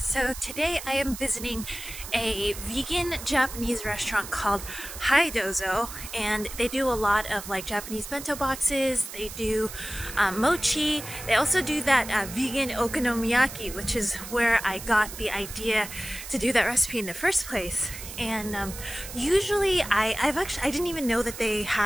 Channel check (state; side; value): noise; right; hiss, 11 dB below the sound